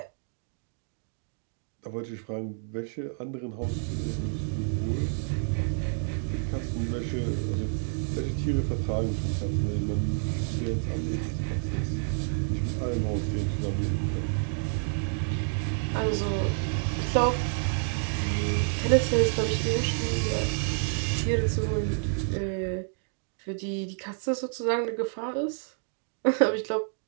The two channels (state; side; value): silent; left; digital silence